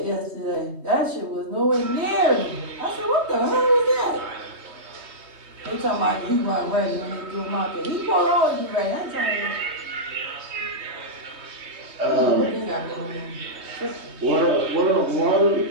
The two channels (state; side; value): late; left; 3.2 ms